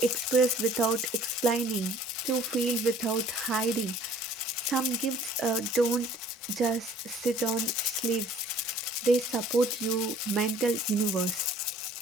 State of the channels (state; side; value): normal; both; correlation 0.53